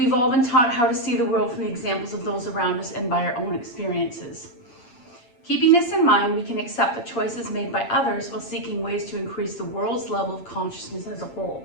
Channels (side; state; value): right; late; 8.6 ms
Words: all been taught how to see the world from the examples of those around us and by our own experiences. Keeping this in mind, we can accept the choices made by others while seeking ways to increase the world's level of consciousness as a